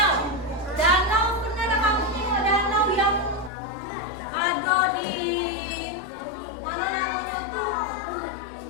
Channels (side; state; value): right; drops out; at 3.5 s